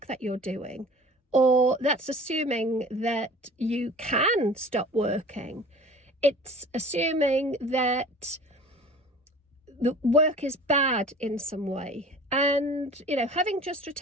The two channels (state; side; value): normal; both; correlation 0.43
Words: that you're doing, or that's assuming that you can stop working. It's assuming that the work is bad in some way. And, having just